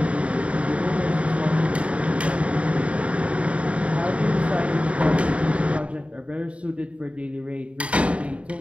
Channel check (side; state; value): left; late; 0.063 ms